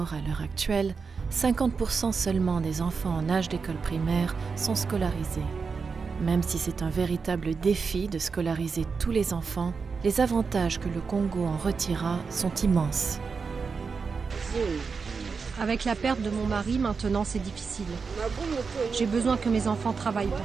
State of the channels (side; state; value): left; quieter; 5.1 dB